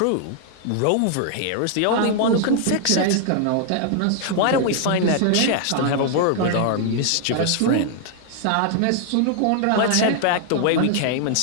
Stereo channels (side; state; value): both; different; correlation 0.00